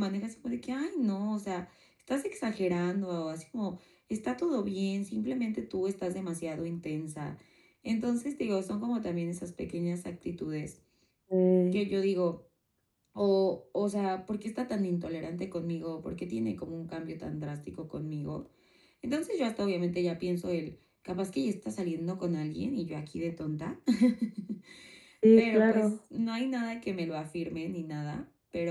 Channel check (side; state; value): both; identical; correlation 1.00